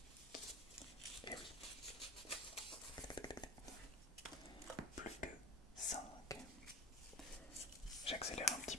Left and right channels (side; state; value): both; normal; correlation 0.34